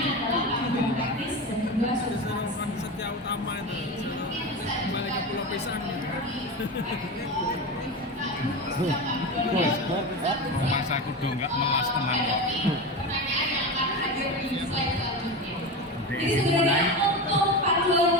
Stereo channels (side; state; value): both; normal; correlation 0.23